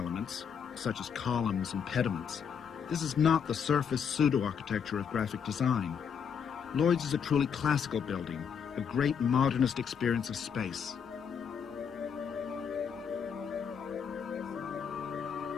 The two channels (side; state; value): right; quieter; 7.1 dB